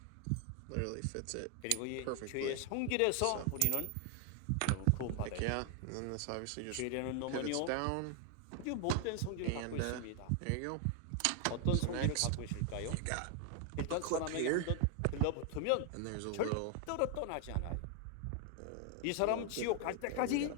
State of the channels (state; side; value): different; both; correlation 0.00